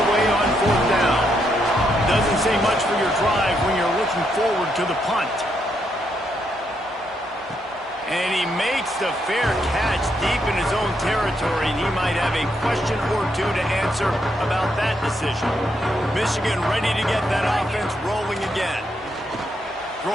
away on 4th down. Doesn't say much for your drive when you're looking forward to the punt. And he makes the fair catch deep in his own territory. And he might have a question or two to answer about that decision. Michigan ready to get that offense rolling again.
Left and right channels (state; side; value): normal; both; correlation 0.78